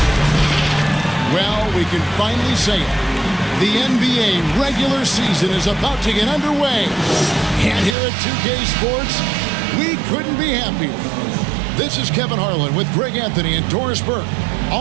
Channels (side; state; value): left; drops out; at 8.0 s